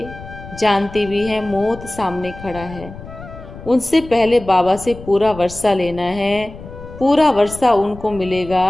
जानते भी हैं मौत सामने खड़ा है, उनसे पहले बाबा से पूरा वर्षा लेना है। पूरा वर्षा उनको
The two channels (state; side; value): noise; left; rumble, 15 dB below the sound